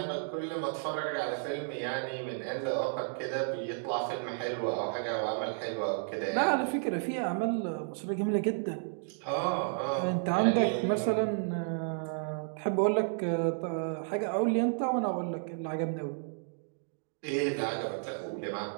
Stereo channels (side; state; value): left; silent; digital silence